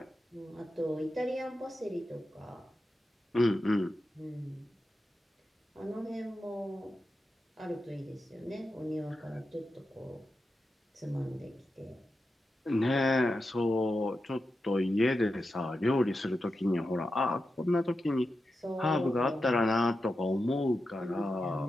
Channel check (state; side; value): normal; both; correlation 0.90